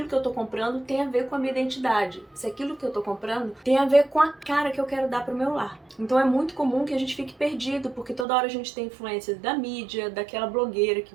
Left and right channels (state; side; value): drops out; left; at 8.2 s